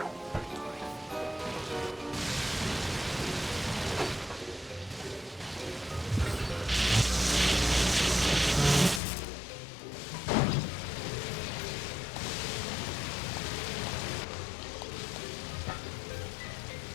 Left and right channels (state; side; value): drops out; right; at 9.0 s